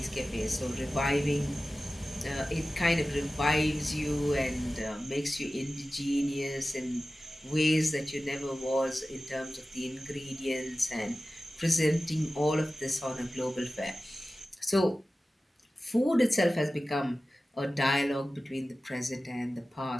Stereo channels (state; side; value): normal; both; correlation 0.95